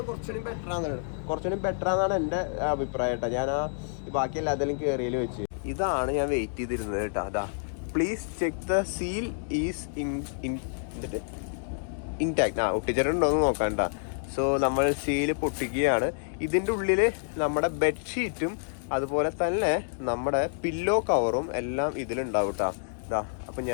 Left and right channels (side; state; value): right; silent; digital silence